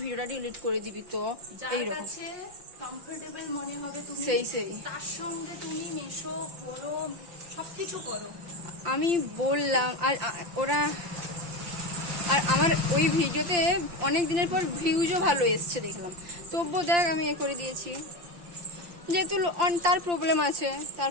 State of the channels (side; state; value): left; late; 5.8 ms